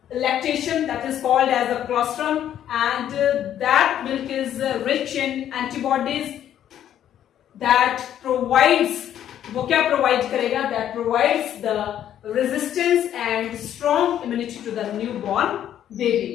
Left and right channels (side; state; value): right; quieter; 10.7 dB